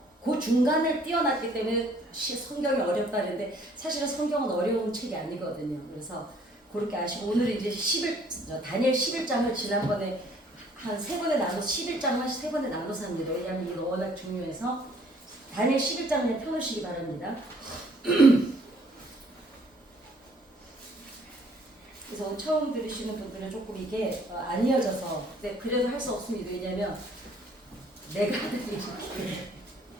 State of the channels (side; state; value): both; normal; correlation 0.60